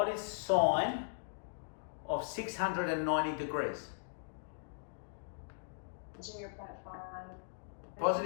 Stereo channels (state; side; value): silent; right; digital silence